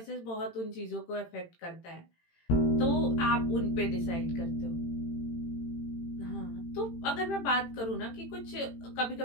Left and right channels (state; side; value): late; right; 18 ms